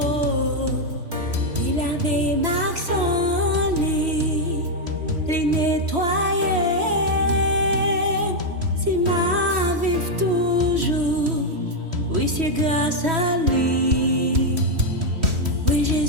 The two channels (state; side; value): late; left; 3.1 ms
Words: Il avait Maxon, il nettoyé. Si ma vive toujours, oui, c'est grâce à lui. Oui,